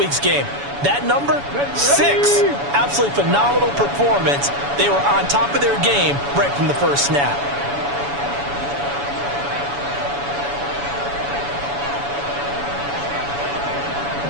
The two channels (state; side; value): late; left; 7.0 ms